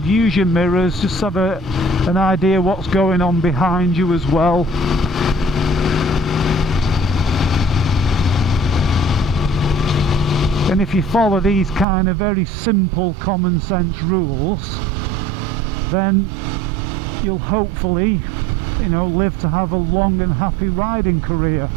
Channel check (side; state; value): left; drops out; at 11.9 s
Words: Use your mirrors, just have an idea what's going on behind you as well. And if you follow these kind of very simple common sense rules, then you'll hopefully, you know, live to have a long and happy riding career.